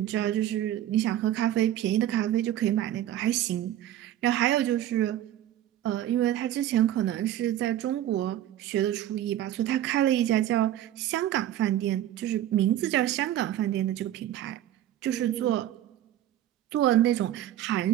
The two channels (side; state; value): left; quieter; 12.4 dB